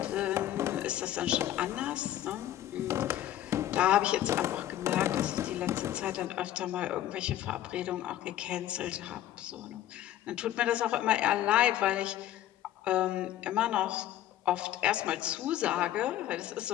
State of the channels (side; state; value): right; quieter; 12.9 dB